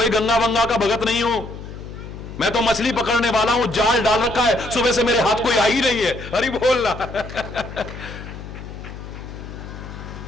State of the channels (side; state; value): left; noise; hum, 12 dB below the sound